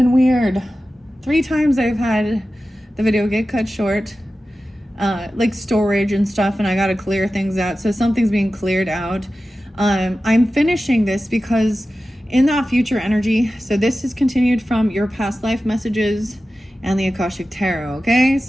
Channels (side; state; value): both; normal; correlation 0.94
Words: weird. 3 times I've had the video get cut short, like storage and stuff, and I got to clear things out. So something's being cleared out. I'm finishing this because in that future energy, so this is continued from your past life messages and the Akashic Tarot, okay?